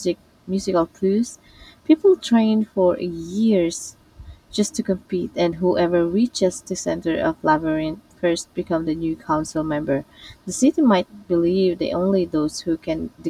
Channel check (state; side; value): identical; both; correlation 1.00